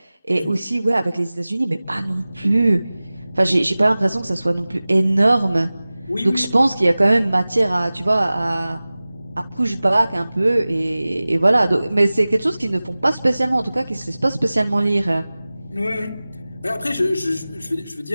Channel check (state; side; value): inverted; both; correlation -0.98